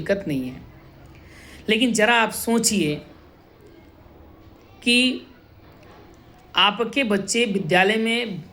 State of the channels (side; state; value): both; identical; correlation 1.00